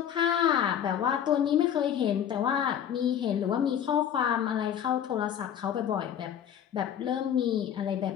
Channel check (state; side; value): quieter; right; 9.4 dB